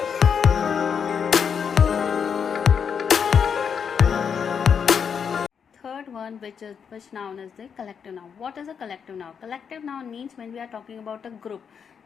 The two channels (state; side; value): quieter; right; 7.0 dB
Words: Which noun is the collective noun. What is a collective noun? Collective noun means when we are talking about a group,